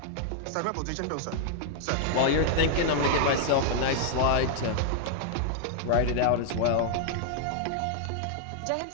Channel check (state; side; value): different; both; correlation -0.01